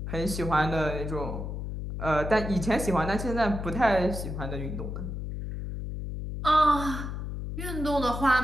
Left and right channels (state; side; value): noise; left; hum, 5 dB below the sound